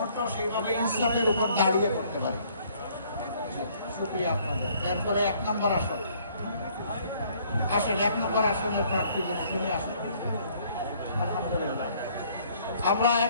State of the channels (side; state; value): both; inverted; correlation -0.61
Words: সেইভাবে ইসলামের উপর দাঁড়িয়ে করতে পারি। শুক্রিয়া আপনাদের। এরপরে 1 নম্বর আসন আসেন, 1 নম্বর আসনের প্রার্থী শুনে আসেন। আলহামদুলিল্লাহ, আমরা